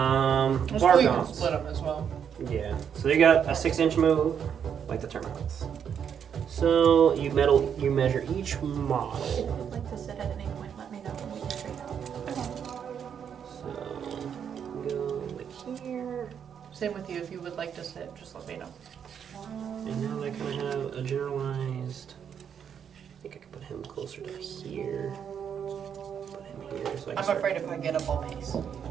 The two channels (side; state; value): left; quieter; 8.0 dB